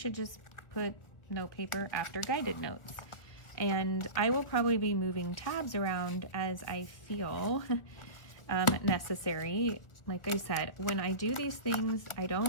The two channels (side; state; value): right; late; 1.2 ms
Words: just put note paper after guided notes. And I will probably be moving tabs around as I feel necessary. Like I said, when I do these things, I